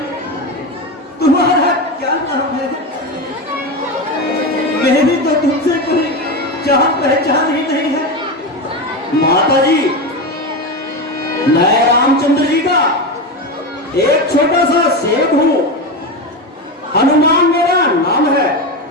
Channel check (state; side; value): normal; both; correlation 0.18